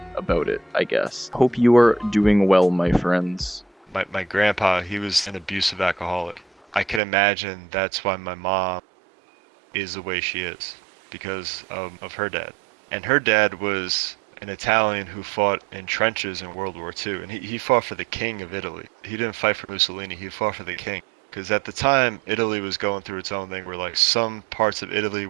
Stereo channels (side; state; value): left; drops out; at 7.0 s